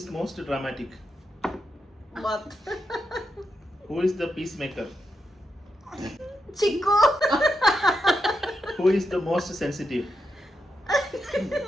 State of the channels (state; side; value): normal; both; correlation 0.85